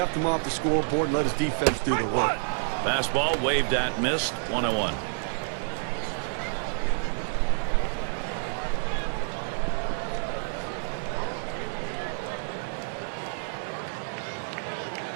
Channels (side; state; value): left; silent; digital silence